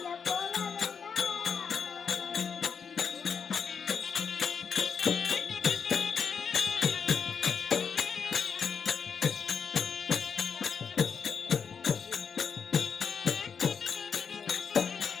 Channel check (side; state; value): right; quieter; 6.4 dB